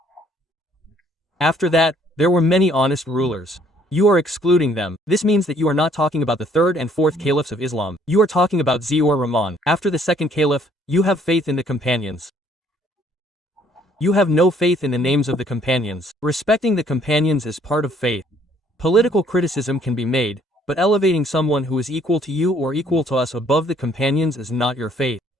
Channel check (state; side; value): normal; both; correlation 0.62